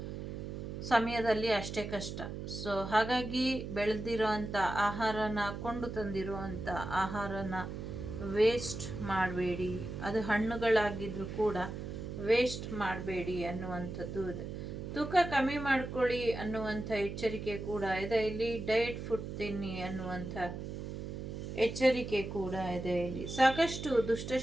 ಸಮಯದಲ್ಲಿ ಅಷ್ಟೇ ಕಷ್ಟ. ಸೊ ಹಾಗಾಗಿ ಬೆಳೆದಿರೋ ಅಂಥ ಆಹಾರನ, ಕೊಂಡು ತಂದಿರೋ ಅಂಥ ಆಹಾರನ ವೇಸ್ಟ್ ಮಾಡಬೇಡಿ. ಅದು ಹಣ್ಣುಗಳಾಗಿದ್ರೂ ಕೂಡ ವೇಸ್ಟ್ ಮಾಡಬೇಡಿ ಅನ್ನುವಂಥದ್ದು ಇದೆ. ತೂಕ ಕಮ್ಮಿ ಮಾಡ್ಕೊಳ್ಳಿ ಅನ್ನುವಂಥ ಎಚ್ಚರಿಕೆ ಕೂಡ ಇದೆ. ಇಲ್ಲಿ ಡಯಟ್ ಫುಡ್ ತಿನ್ನಿ ಅನ್ನುವಂಥ ಎಚ್ಚರಿಕೆ ಕೂಡ ಇದೆ. ಇಲ್ಲಿ ಸಾಕಷ್ಟು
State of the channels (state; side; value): noise; right; hum, 7 dB below the sound